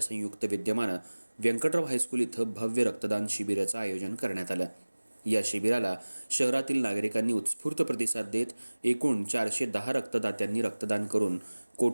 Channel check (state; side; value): inverted; both; correlation -1.00